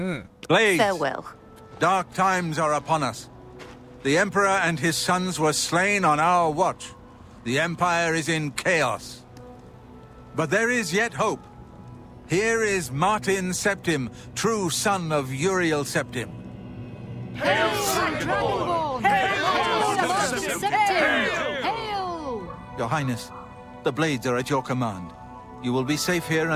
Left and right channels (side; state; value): both; identical; correlation 1.00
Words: Blades! Farewell. Dark times are upon us. The Emperor and his sons were slain on our watch. The Empire is in chaos. But there is yet hope. Here is Martin Septim, true son of Uriel Septim. Hail, Dragonborn! Hail, Septim! Hail! Your Highness, the blades are at your command. You will be safe here